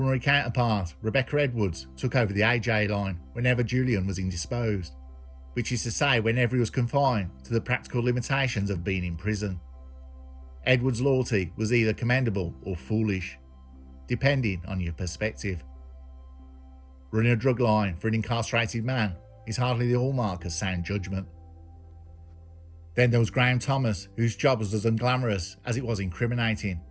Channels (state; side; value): identical; both; correlation 1.00